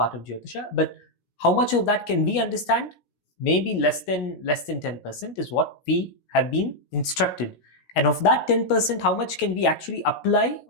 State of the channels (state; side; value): late; right; 16 ms